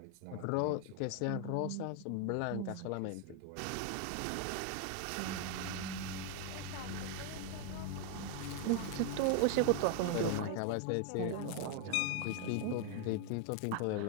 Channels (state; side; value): different; both; correlation 0.00